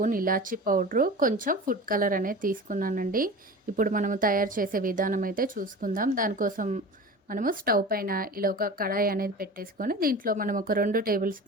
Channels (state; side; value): normal; both; correlation 0.35